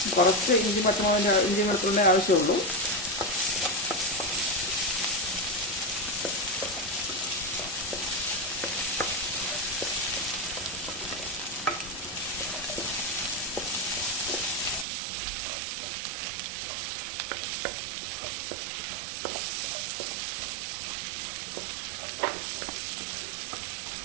കുറച്ച് ഇഞ്ചി വെളുത്തുള്ളിൻ്റെ ആവശ്യമുള്ളൂ.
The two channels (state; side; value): drops out; left; at 14.9 s